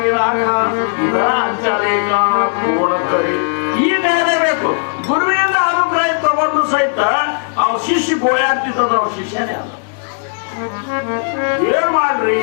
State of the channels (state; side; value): silent; right; digital silence